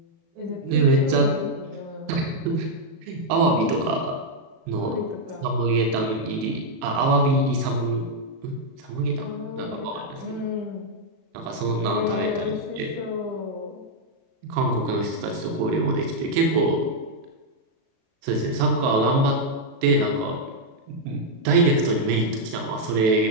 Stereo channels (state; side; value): late; left; 37 ms